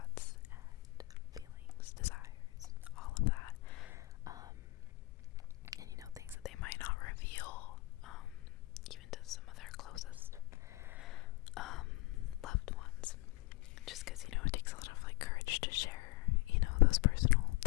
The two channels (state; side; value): quieter; right; 21.6 dB